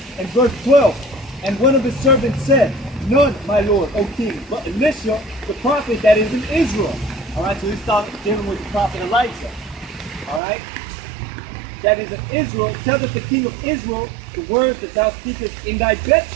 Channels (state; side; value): drops out; left; at 10.4 s